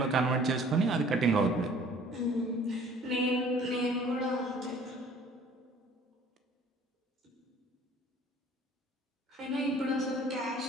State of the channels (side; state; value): both; normal; correlation 0.52